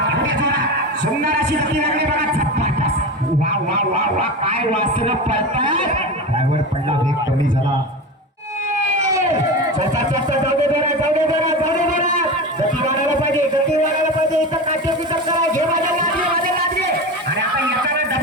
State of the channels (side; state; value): both; normal; correlation 0.25